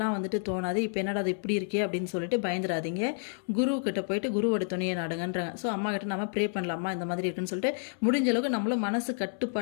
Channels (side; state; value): right; silent; 58 dB below the other